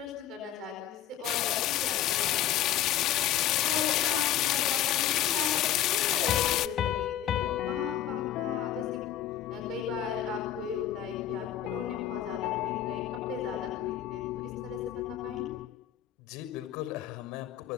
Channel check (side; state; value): right; quieter; 11.3 dB